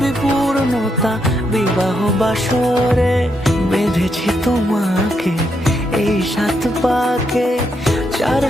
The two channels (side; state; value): both; normal; correlation 0.79